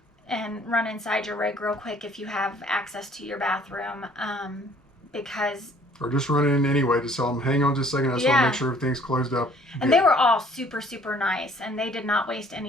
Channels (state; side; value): normal; both; correlation 0.58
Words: And run inside your rig real quick if you have access to your bathroom, because... Or just run in anyway to tell them, hang on just a second, I just want to make sure everything's closed up. And they were all super, super nice, and they did not waste